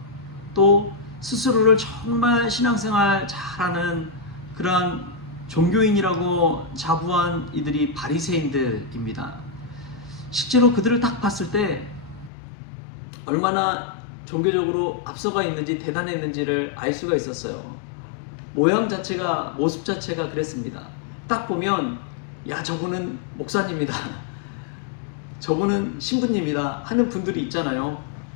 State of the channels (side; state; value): right; drops out; at 12.3 s